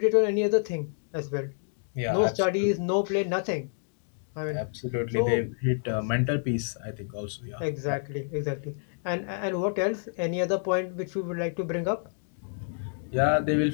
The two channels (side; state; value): right; silent; digital silence